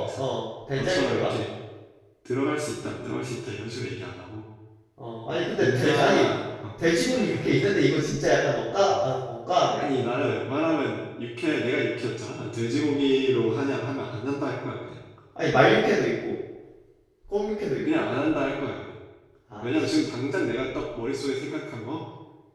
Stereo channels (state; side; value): identical; both; correlation 1.00